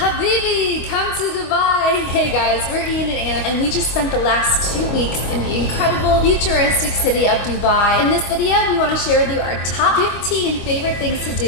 Habibi, come to Dubai! Hey guys, we're Ian and Anna, and we just spent the last 2 weeks in the incredible, futuristic city of Dubai. In this video, we want to share with you our top 15 favorite things to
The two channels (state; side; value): late; right; 25 ms